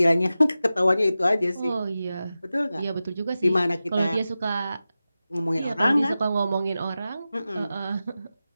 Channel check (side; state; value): both; inverted; correlation -0.94